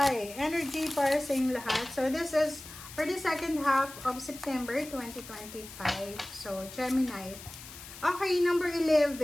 energy para sa inyong lahat. So this is for the second half of September 2025. So Gemini. Okay, number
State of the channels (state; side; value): noise; left; hiss, 15 dB below the sound